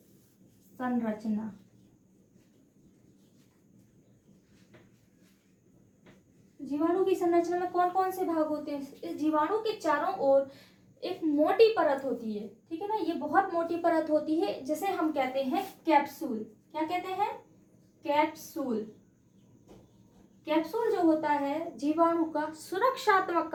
संरचना। जीवाणु की संरचना में कौन कौन से भाग होते हैं? इस जीवाणु के चारों ओर एक मोटी परत होती है, ठीक है ना। ये बहुत मोटी परत होती है जिसे हम कहते हैं कैप्सूल। क्या कहते हैं? कैप्सूल। कैप्सूल जो होता है जीवाणु का सुरक्षात्मक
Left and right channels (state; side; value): identical; both; correlation 1.00